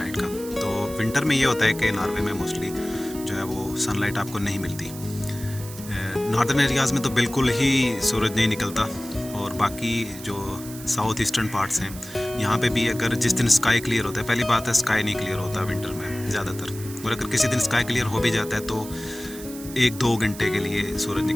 का। तो विंटर में ये होता है कि नॉर्वे में मोस्टली जो है वो सनलाइट आपको नहीं मिलती। नॉर्दर्न एरियाज़ में तो बिल्कुल ही सूरज नहीं निकलता और बाकी जो साउथ ईस्टर्न पार्ट्स हैं यहाँ पे भी अगर जिस दिन स्काई क्लियर होता है, पहली बात है स्काई नहीं क्लियर होता विंटर में ज़्यादातर, और अगर किसी दिन स्काई क्लियर हो भी जाता है तो 1-2 घंटे के लिए सूरज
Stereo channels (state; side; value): noise; right; hiss, 14 dB below the sound